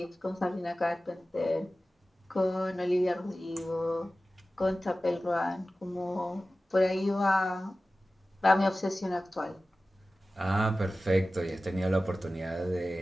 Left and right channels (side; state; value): both; normal; correlation 0.96